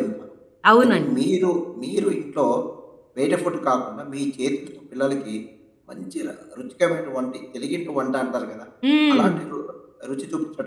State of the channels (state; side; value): identical; both; correlation 1.00